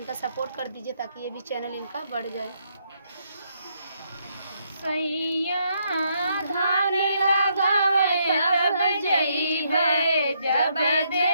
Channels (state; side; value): inverted; both; correlation -0.74